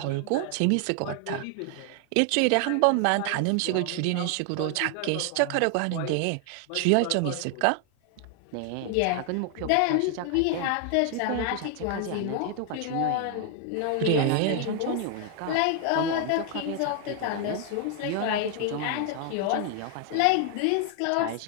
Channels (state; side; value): different; both; correlation 0.00